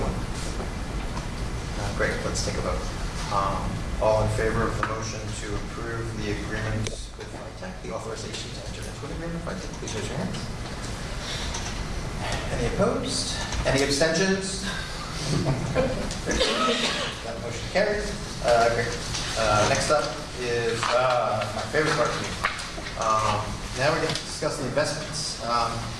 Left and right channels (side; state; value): both; identical; correlation 1.00